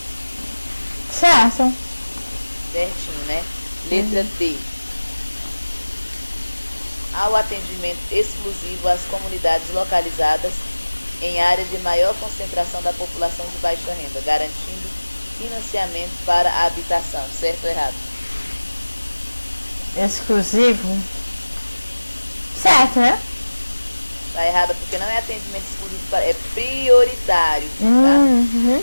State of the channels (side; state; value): both; inverted; correlation -1.00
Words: Certo. Certinho, né? Letra D. Ao atendimento exclusivo às comunidades localizadas em áreas de maior concentração da população de baixa renda, garantindo financiamento para a habitação. Certo ou errado? Exclusivo? Certo, né? Tá errado porque não é atendimento exclusivo, é prioritário. Tá?